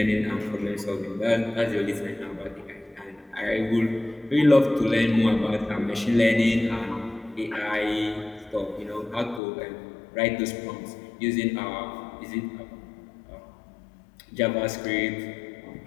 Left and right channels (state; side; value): drops out; right; at 9.4 s